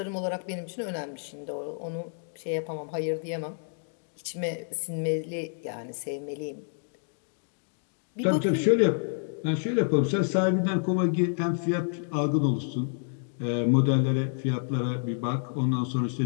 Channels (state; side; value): silent; right; digital silence